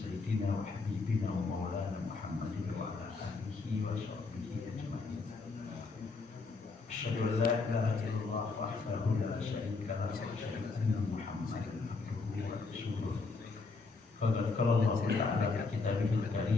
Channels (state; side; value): quieter; right; 4.1 dB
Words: wa habibina wa maulana Muhammadin wa ala alihi wa sahbihi ajma'in. Asyhadu an la ilaha illallah wahdahu la syarika lahu wa asyhadu anna Muhammadan abduhu wa rasuluh. Qala Allah Ta'ala fi kitabihil